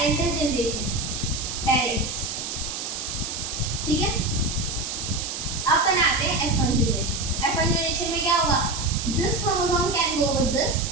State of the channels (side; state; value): right; noise; hiss, 5 dB below the sound